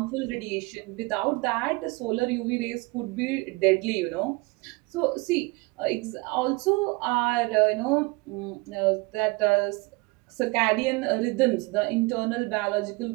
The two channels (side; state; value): left; quieter; 25.3 dB